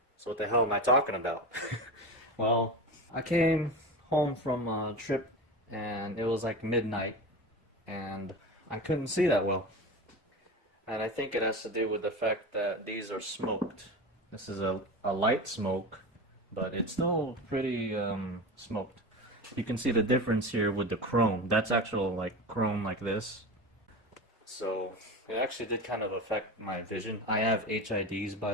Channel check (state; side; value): normal; both; correlation 0.27